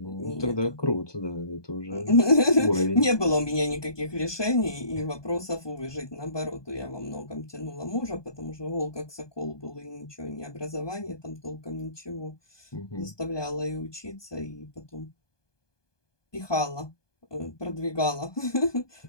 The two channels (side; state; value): right; late; 1.2 ms